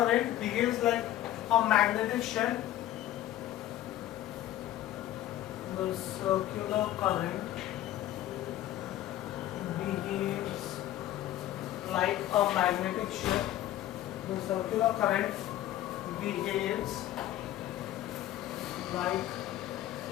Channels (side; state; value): right; quieter; 13.5 dB